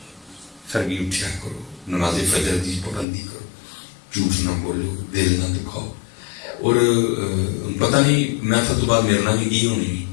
سرگی اٹھیا کرو, نماز فجر کی پابندی کرو, جھوٹ نہ بولو, دل نہ دکھاؤ. اور پتہ نہیں محفل تو بعد میرے نام بھی کی ہونی,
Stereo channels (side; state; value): right; drops out; at 3.1 s